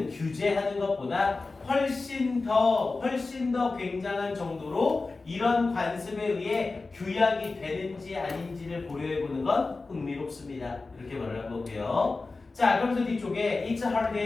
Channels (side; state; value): right; quieter; 3.7 dB